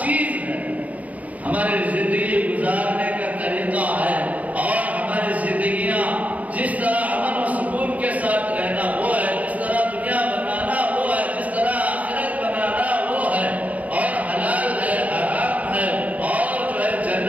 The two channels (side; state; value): left; late; 0.072 ms